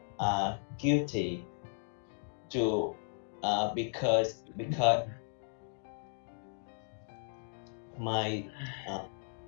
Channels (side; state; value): right; silent; digital silence